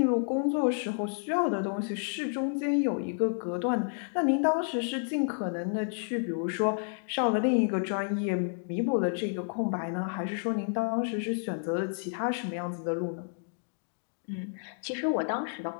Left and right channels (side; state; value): right; silent; digital silence